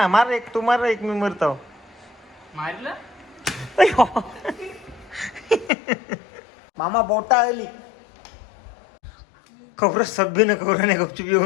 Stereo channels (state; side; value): drops out; right; at 5.7 s